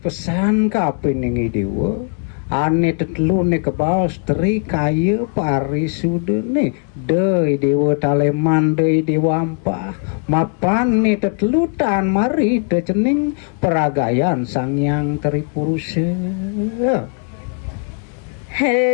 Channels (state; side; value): quieter; right; 39.1 dB